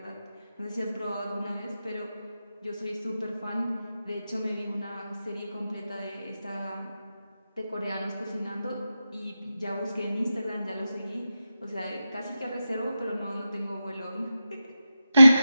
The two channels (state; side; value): inverted; both; correlation -0.91